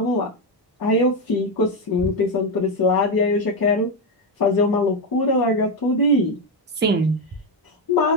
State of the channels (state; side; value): normal; both; correlation 0.08